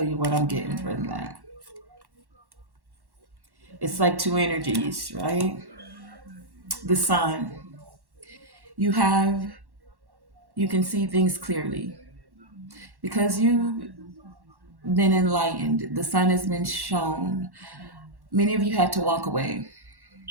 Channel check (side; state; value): left; late; 1.1 ms